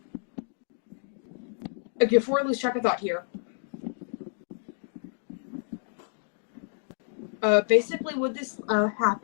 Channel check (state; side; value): silent; right; digital silence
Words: Okay, before I lose track of thought here. Basically what this